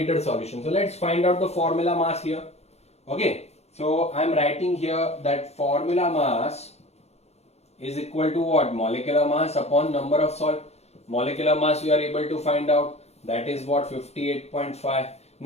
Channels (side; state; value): right; late; 0.31 ms